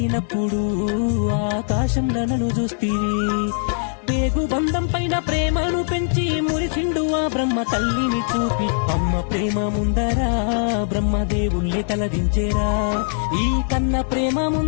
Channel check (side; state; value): right; silent; digital silence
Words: ఆకాశంలో నన్ను చూస్తీవి పేగు బంధం పైన ప్రేమను పెంచి మురిసిండు ఆ బ్రహ్మ తల్లిని చూపి అమ్మ ప్రేమ ముందరా బ్రహ్మదేవుళ్ళే తలదించేరా ఈ కన్న ప్రేమ